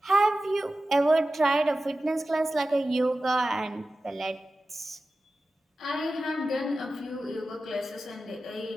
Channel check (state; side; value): normal; both; correlation 0.94